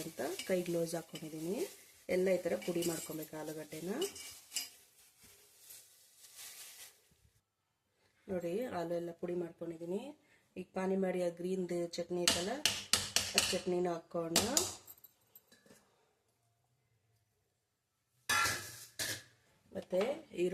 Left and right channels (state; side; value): identical; both; correlation 1.00